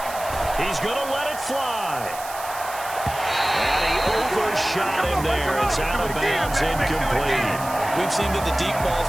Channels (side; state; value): right; noise; hiss, 13 dB below the sound